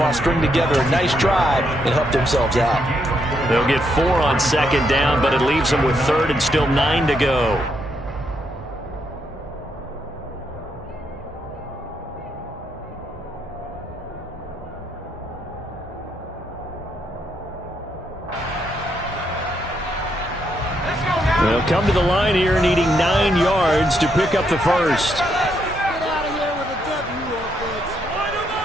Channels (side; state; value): both; normal; correlation 0.77